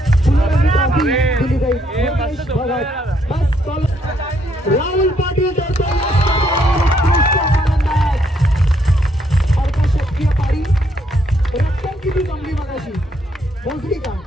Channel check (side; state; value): both; normal; correlation 0.72